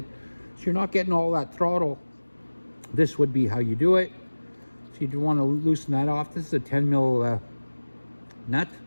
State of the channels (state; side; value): inverted; both; correlation -1.00